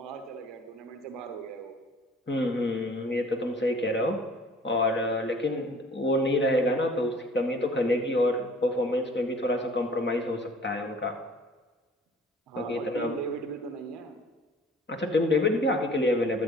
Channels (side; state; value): both; normal; correlation 0.51